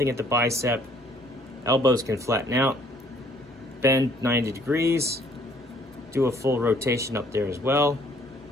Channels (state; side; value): normal; both; correlation 0.61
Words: at the bicep. Elbows can flatten out, bend 90 degrees, do a full rotation up there as well.